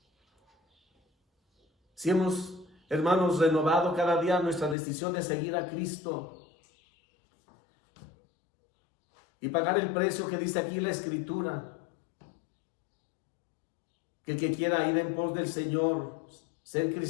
Si hemos, hermanos, renovado cada día nuestra decisión de seguir a Cristo y pagar el precio que dice aquí la Escritura, que el que quiera ir en pos del Señor, ser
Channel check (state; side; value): drops out; right; at 4.8 s